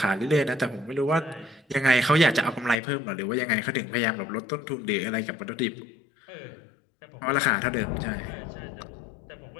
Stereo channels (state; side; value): drops out; right; at 2.8 s